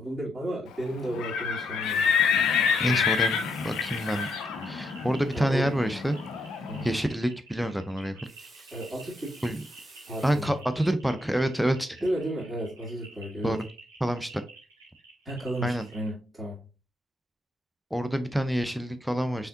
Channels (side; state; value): both; normal; correlation 0.79